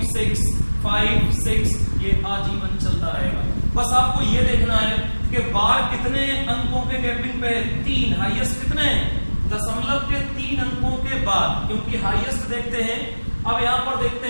6 5 6 ये आजीवन चलता रहेगा। बस आपको ये देखना है कि बार कितने अंकों के गैपिंग पे है, 3। हाईएस्ट कितने हैं, दशमलव के 3 अंकों के बाद, क्योंकि हाईएस्ट देखते हैं। अब यहाँ पर देखते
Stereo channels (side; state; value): both; inverted; correlation -1.00